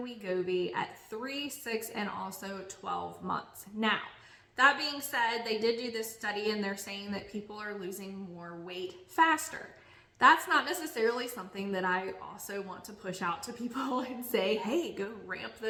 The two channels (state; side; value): identical; both; correlation 1.00